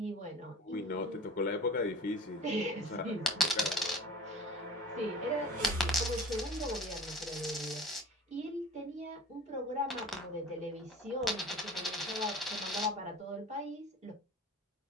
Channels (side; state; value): both; normal; correlation 0.40